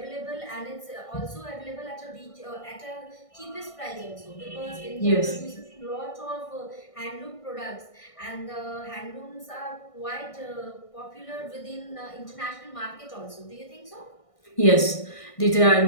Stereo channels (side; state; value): right; late; 1.6 ms